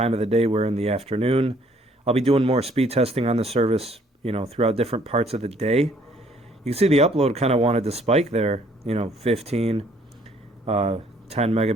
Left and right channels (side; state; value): both; normal; correlation 0.62